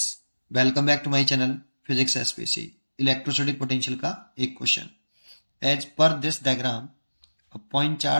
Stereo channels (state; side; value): inverted; both; correlation -1.00